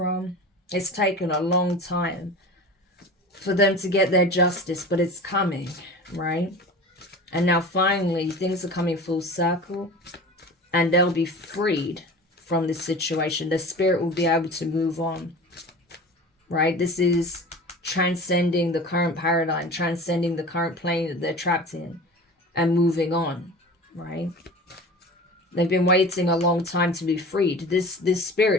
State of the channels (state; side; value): normal; both; correlation 0.36